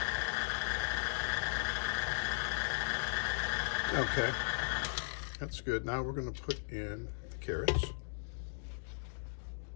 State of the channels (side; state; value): right; silent; digital silence